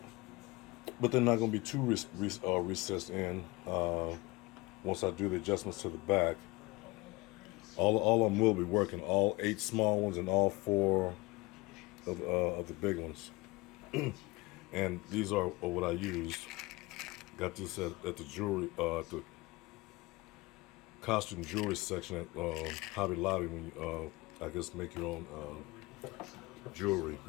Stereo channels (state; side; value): quieter; right; 22.9 dB